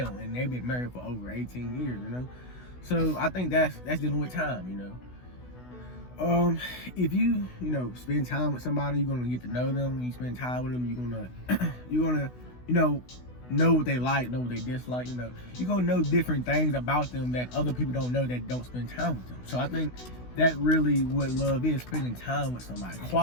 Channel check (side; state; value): right; late; 16 ms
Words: and they've been married for over 18 years, you know. So I think that's dealing with time, you know. If you spend time with somebody, you're gonna get to know them. When you spend time with them, you're gonna know what they like, know what they dislike. You know, you're gonna know different things about them that other people don't know that don't spend time with them. So I think that really what love is, spending time with somebody,